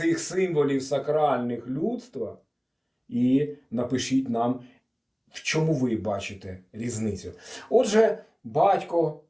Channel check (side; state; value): both; identical; correlation 1.00